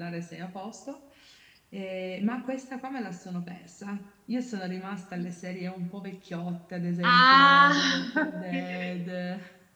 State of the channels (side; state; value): both; identical; correlation 1.00